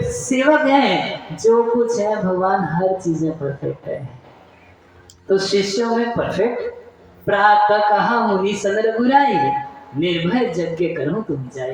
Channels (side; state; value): both; identical; correlation 1.00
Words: सेवक है। जो कुछ है भगवान हर चीज में परफेक्ट है। तो शिष्यों में परफेक्ट। प्रातः कहा मुनि सन रघुराई, निर्भय यज्ञ करो तुम